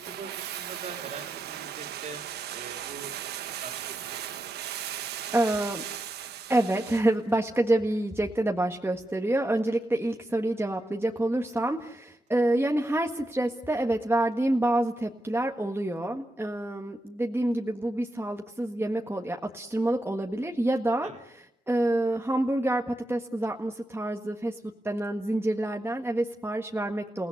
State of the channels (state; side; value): normal; both; correlation 0.87